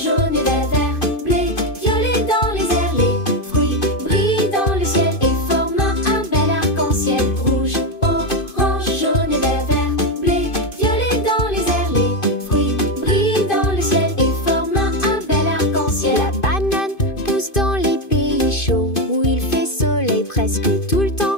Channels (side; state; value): right; late; 2.5 ms